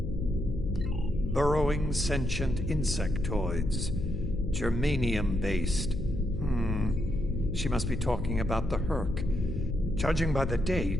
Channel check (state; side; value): noise; left; hum, 5 dB below the sound